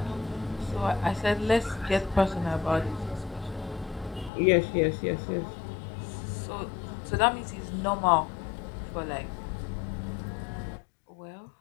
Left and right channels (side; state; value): right; drops out; at 4.3 s